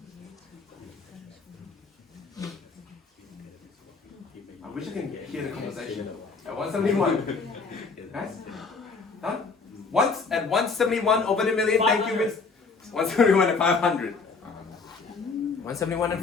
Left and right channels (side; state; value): right; quieter; 4.5 dB